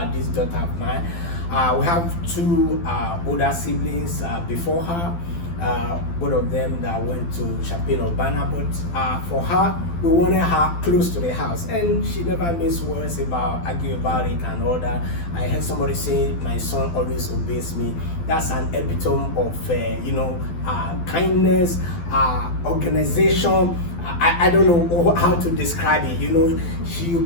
this daughter of mine. We have two older siblings before her, both of them that went to Champaign-Urbana, but for her, we wanted her close to the house, and she never missed words about, argue about it and all that. I heard somebody say, my son always obeys me. That's an epitome of, kindness, organization. I don't know how to describe it. She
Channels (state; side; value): late; right; 12 ms